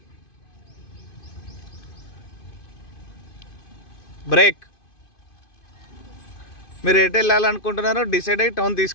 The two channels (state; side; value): late; right; 2.5 ms